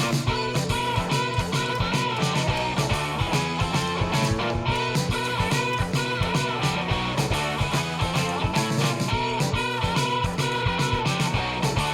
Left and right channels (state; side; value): identical; both; correlation 1.00